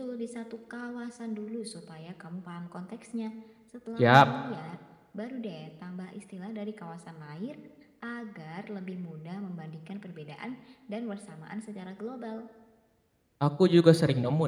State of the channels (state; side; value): identical; both; correlation 1.00